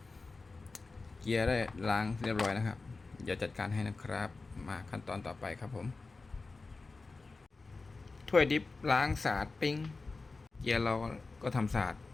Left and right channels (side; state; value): right; quieter; 3.8 dB